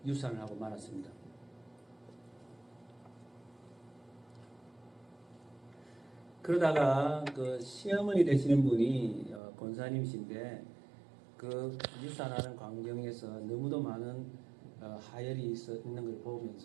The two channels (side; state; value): left; drops out; at 9.4 s